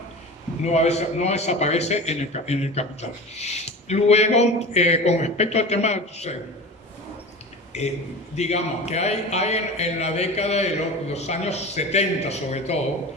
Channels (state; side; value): normal; both; correlation 0.32